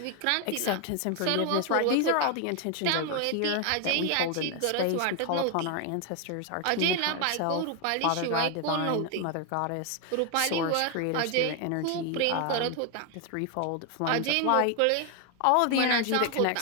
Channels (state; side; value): different; both; correlation 0.01